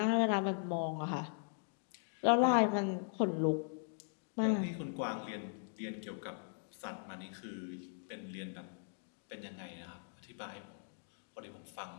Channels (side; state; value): right; silent; digital silence